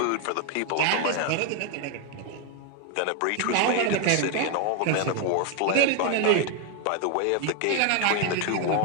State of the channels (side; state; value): both; different; correlation 0.01